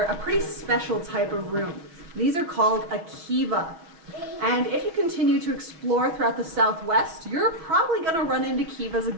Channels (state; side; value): late; left; 6.1 ms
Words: a pretty special type of room. These are called a kiva. And if you continue to explore throughout the Southwest, you're probably going to run into kivas